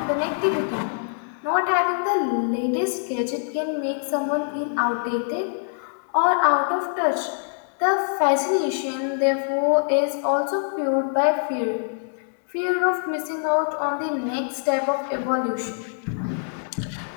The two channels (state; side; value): silent; right; digital silence